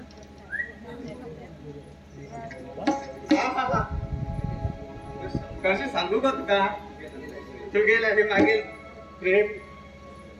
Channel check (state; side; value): identical; both; correlation 1.00